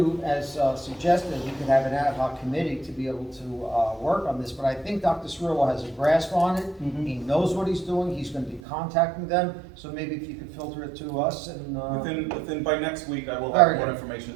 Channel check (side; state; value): left; drops out; at 8.6 s